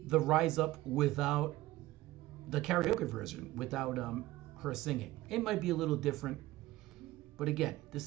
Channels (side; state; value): left; quieter; 17.4 dB